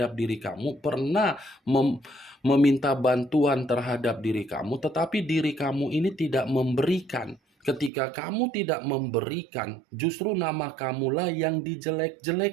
diri kamu, pernah meminta bantuan terhadap diri kamu, tetapi diri kamu ini tidak memberikan. Ketika kamu tidak memberikan, justru nama kamulah yang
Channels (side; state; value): left; drops out; at 7.9 s